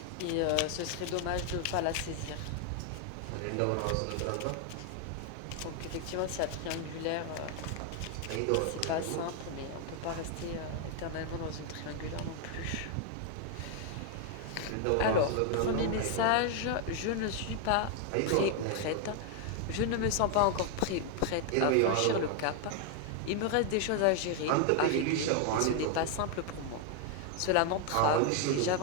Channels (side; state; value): both; different; correlation 0.00